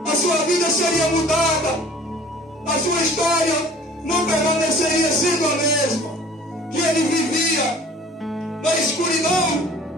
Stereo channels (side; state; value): both; normal; correlation 0.49